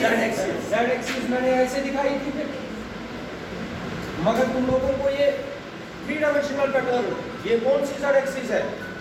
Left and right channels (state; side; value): identical; both; correlation 1.00